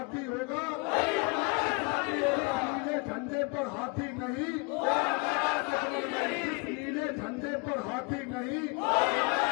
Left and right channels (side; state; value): right; quieter; 28.9 dB